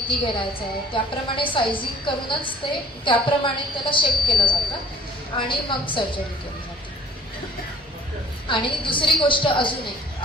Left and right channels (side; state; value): both; normal; correlation 0.52